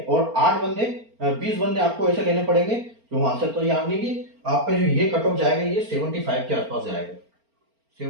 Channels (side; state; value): left; late; 4.4 ms